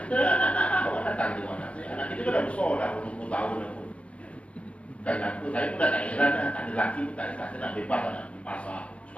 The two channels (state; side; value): late; right; 0.062 ms